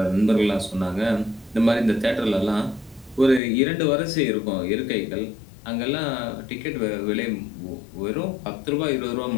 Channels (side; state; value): right; drops out; at 3.4 s